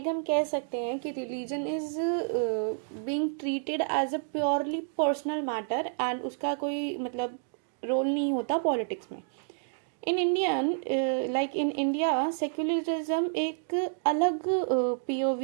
हम कह सकते हैं कि religion is being treated as a purely personal matter and उसका कोई मतलब रोल नहीं होता पॉलिटिक्स में। In Indian in India secularism एक अलग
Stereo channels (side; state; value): left; silent; digital silence